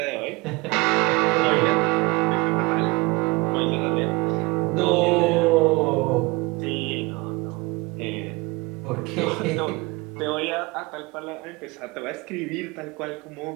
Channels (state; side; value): quieter; left; 24.7 dB